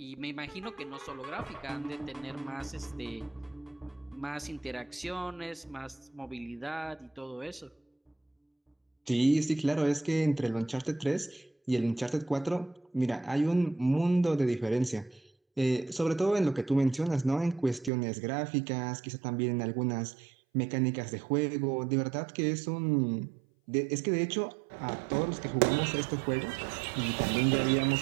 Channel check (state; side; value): drops out; left; at 17.9 s